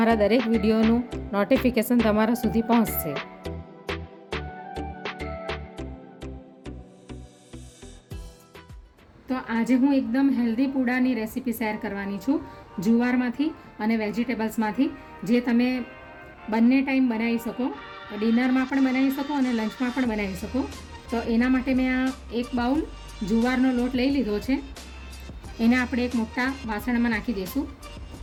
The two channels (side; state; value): both; identical; correlation 1.00